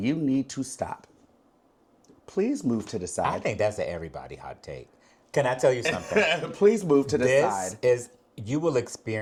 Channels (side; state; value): both; identical; correlation 1.00